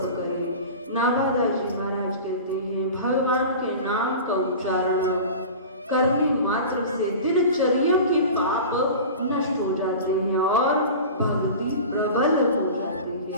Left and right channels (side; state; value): both; inverted; correlation -0.34